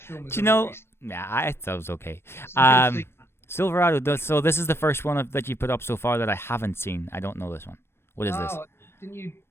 film. I thought it was okay. Silverado. So this is the first one that you put up so far that I haven't seen. I don't know this one. What is this?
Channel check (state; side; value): late; right; 0.12 ms